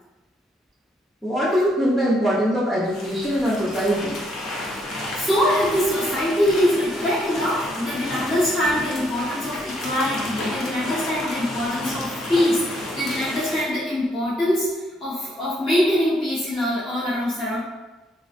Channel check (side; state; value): both; normal; correlation 0.72